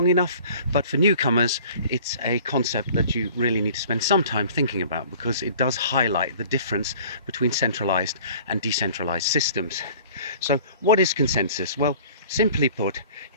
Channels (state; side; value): inverted; both; correlation -0.48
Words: enough, but for newcomers it's a concept that you really need to spend some time thinking about, because it does highlight the difference between centralized and decentralized systems. So what is consensus? Well, simply put,